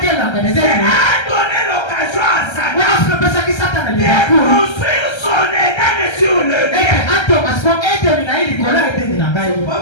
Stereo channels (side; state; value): right; late; 1.3 ms